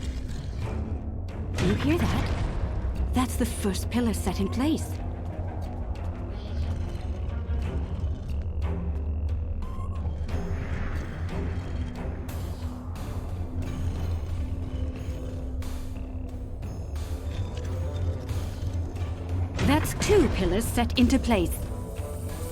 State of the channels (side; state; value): both; identical; correlation 1.00